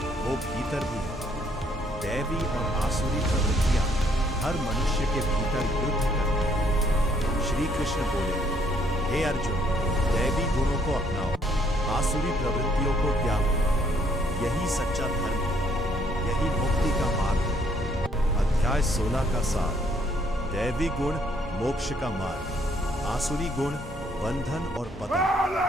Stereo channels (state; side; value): normal; both; correlation 0.66